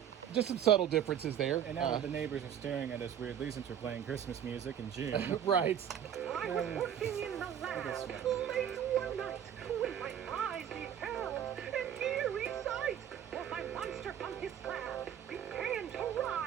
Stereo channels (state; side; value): quieter; left; 9.5 dB